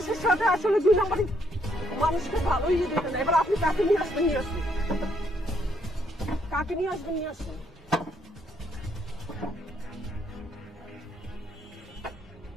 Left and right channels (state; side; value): normal; both; correlation 0.71